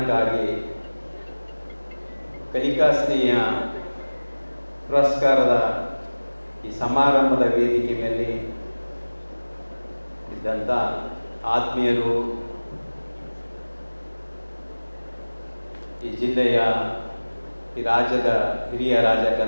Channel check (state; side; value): inverted; both; correlation -1.00